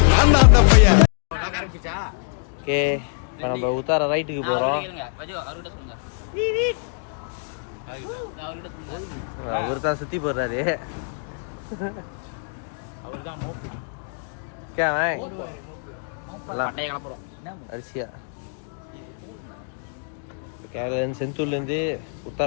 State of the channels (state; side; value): silent; right; digital silence